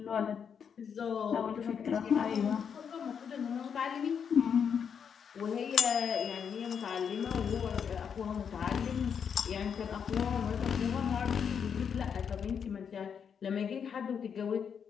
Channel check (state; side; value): quieter; right; 7.2 dB